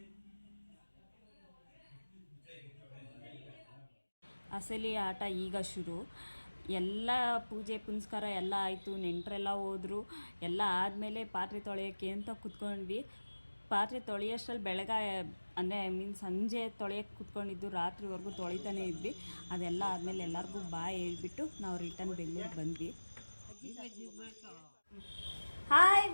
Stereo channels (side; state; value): both; inverted; correlation -1.00